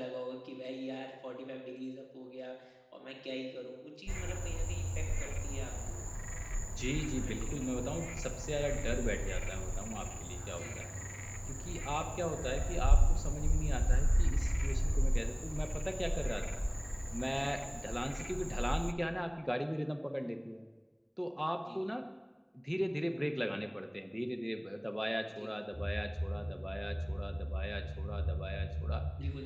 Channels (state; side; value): identical; both; correlation 1.00